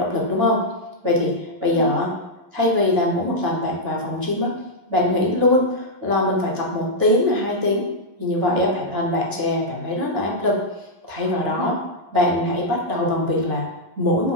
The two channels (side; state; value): left; late; 11 ms